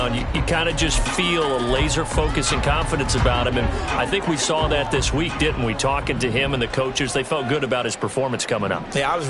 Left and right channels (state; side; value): identical; both; correlation 1.00